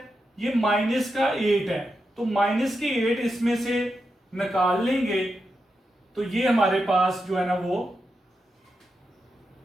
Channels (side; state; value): both; normal; correlation 0.87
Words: ये माइनस का 8 है, तो माइनस के 8 इसमें से निकाल लेंगे तो ये हमारे पास जो है ना वो